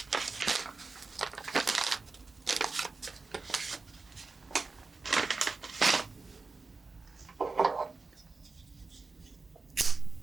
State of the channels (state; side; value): quieter; left; 3.9 dB